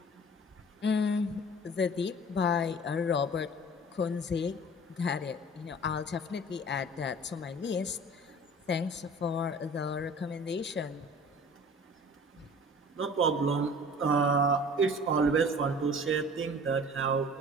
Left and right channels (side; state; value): both; normal; correlation 0.44